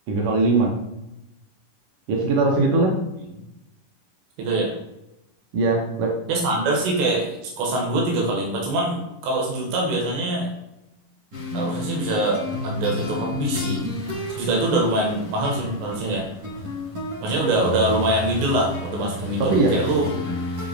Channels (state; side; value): late; left; 10 ms